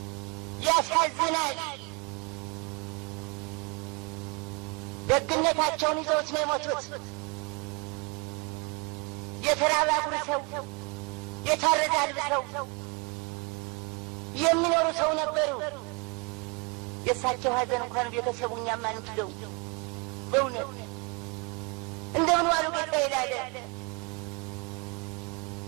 ያሳዝናል። ደግነታቸውን ይዘውት ነው የሞቱት። የተራበ አጉርሰው የታረደ አልብሰው የሚኖሩ ሰው ነበሩ። የእሳቸው ሀዘን እንኳን ቤተሰቡ እኛም አንችለው። በእውነት እንደምን ዋሉ ጌታ ይላል።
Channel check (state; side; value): quieter; left; 31.2 dB